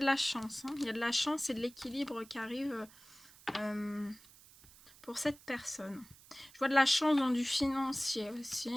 la chance. Hein. Il y a de la chance et de l'équilibre qui arrive pour cette personne. Je vois de la chance dans du financier aussi.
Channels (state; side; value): noise; right; hiss, 23 dB below the sound